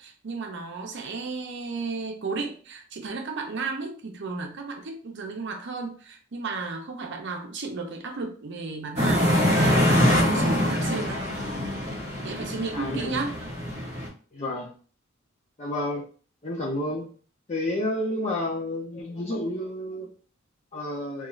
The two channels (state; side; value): normal; both; correlation 0.49